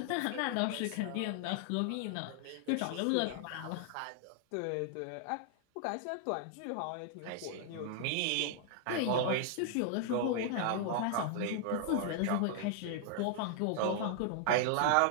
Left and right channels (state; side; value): different; both; correlation 0.00